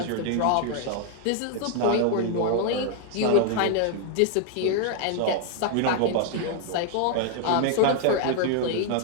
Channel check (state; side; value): different; both; correlation 0.00